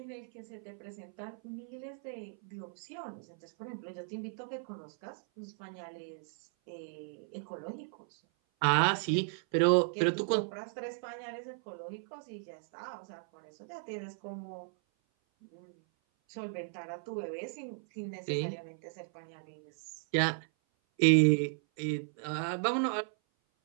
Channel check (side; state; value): left; silent; 54 dB below the other